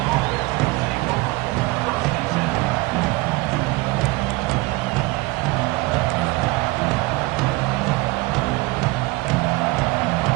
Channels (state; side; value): quieter; left; 22.1 dB